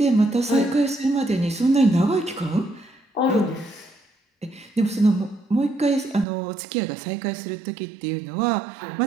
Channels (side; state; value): left; drops out; at 6.2 s